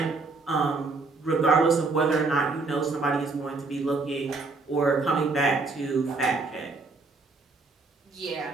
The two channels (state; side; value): quieter; left; 3.8 dB